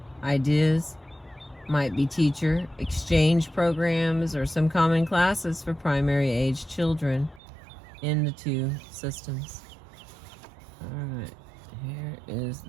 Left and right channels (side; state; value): left; drops out; at 7.4 s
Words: ideas might be teacher exchange programs or some common classes for primary age children in the two systems. Alright, here is